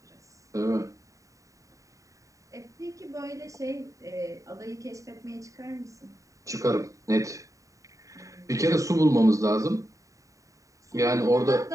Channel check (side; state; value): left; late; 0.16 ms